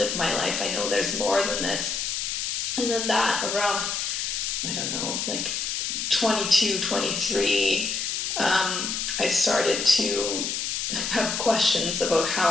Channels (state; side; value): noise; left; hiss, 2 dB below the sound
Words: my life. I know there's more than this. And then that around, I don't know, like 22, 23, I started to have questions about how